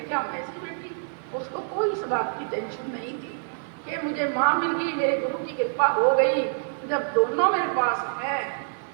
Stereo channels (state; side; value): silent; left; digital silence